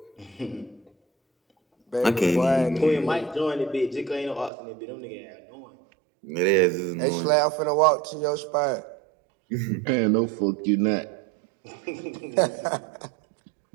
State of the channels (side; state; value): left; drops out; at 4.5 s